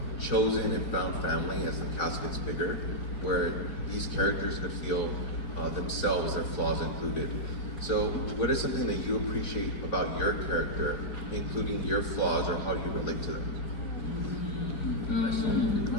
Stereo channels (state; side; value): late; right; 4.5 ms